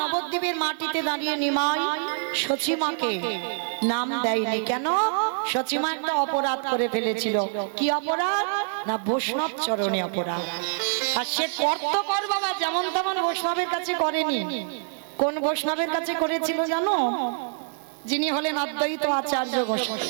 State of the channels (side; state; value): left; silent; 61 dB below the other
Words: নবদ্বীপের মাটিতে দাঁড়িয়ে নিমাই সচিমাকে নাম দেয়নি কেন? সচিমা একটা অপরাধ করে ফেলেছিল। কি অপরাধ? না বৈষ্ণব চরণে অপরাধ। আর সে করত কর বাবা, যেমন তেমন বৈষ্ণবের কাছে করেনি। কোন বৈষ্ণবের কাছে করেছিল জানো? যিনি হলেন অদ্বৈত আচার্য